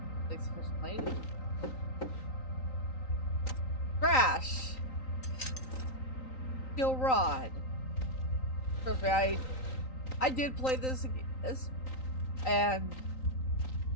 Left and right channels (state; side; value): late; right; 3.9 ms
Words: Crash! Steel rod. Trust me, I did play this and